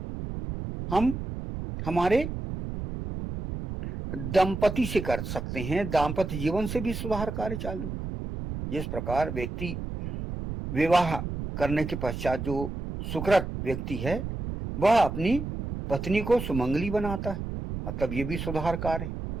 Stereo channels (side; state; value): right; noise; rumble, 6 dB below the sound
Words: हम हमारे दंपति से कर सकते हैं। दाम्पत्य जीवन से भी सुधार कार्य चालू। जिस प्रकार व्यक्ति विवाह करने के पश्चात जो सुकृत व्यक्ति है वह अपनी पत्नी को सुमंगली बनाता है, मतलब ये भी सुधार कार्य है।